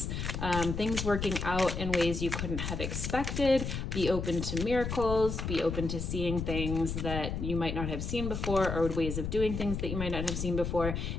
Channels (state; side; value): noise; left; rumble, 3 dB below the sound